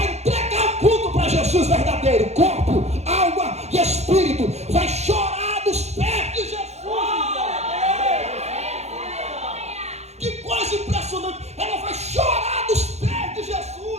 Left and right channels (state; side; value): late; left; 0.32 ms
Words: entregar o culto para Jesus verdadeiro, corpo, alma e espírito. Vai chorar nos pés de Jesus. Que coisa impressionante. Ela vai chorar nos pés de